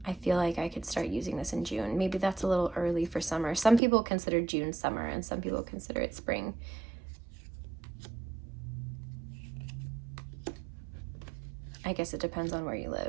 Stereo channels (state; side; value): drops out; left; at 3.8 s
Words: I feel like I could start using this in June. Maybe that's a little early for summer. Some people consider June summer and some people consider it spring. I guess it depends on where you